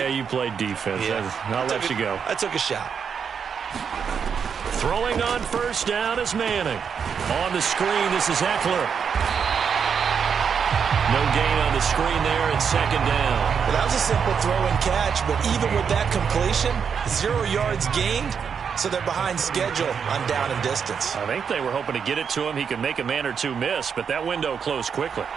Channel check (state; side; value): quieter; left; 6.8 dB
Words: you played defense. Yeah. I'll let you go. I took a shot. Throwing on first down is Manning. On the screen, this is Eckler. No gain on the screen there, and second down. Well, that was a simple throw and catch, but even with that completion, 0 yards gained, so they're behind schedule on down and distance. I think they were hoping to get it to him. He could make a man or two miss, but that window closed quickly.